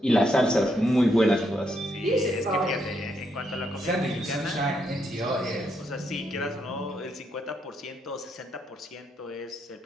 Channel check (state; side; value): normal; both; correlation 0.77